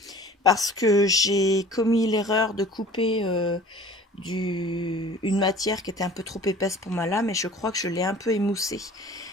parce que j'ai commis l'erreur de couper une matière qui était un peu trop épaisse pour ma lame et je crois que je l'ai un peu émoussée.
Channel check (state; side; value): normal; both; correlation 0.46